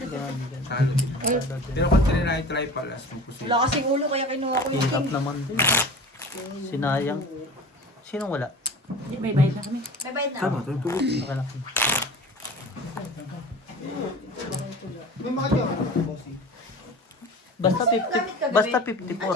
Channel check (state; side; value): normal; both; correlation 0.38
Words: Talo din. Pero kung try palas ng puso. Wala kasing ulo kaya kinuha ko yung Hirap naman din. Sinayang. Sinong wala? May bayad na kami. May bayad na. Tama, tama. Akala ko. May mga dyan. Bossy. Basta 50. Basta